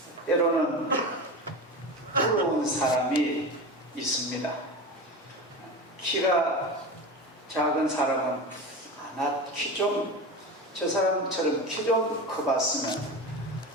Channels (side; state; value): both; normal; correlation 0.27